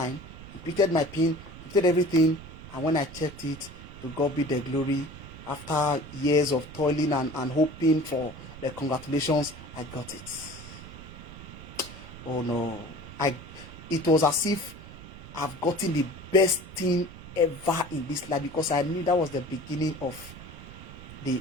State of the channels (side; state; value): right; noise; rumble, 15 dB below the sound